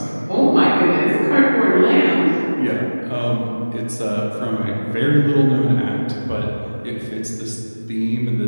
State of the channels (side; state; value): both; inverted; correlation -1.00